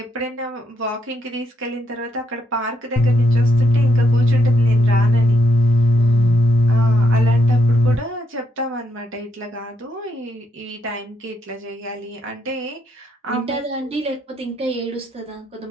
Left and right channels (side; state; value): both; normal; correlation 0.77